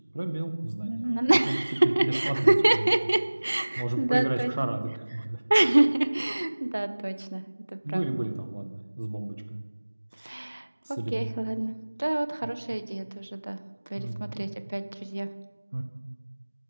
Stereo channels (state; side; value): inverted; both; correlation -1.00